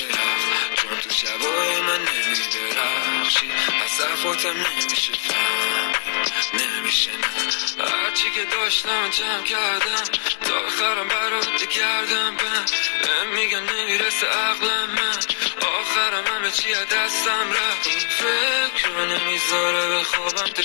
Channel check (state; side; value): quieter; right; 36.5 dB